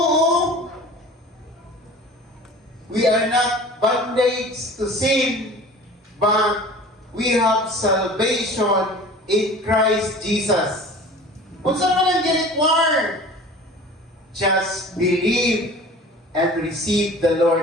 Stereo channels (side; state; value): both; normal; correlation 0.42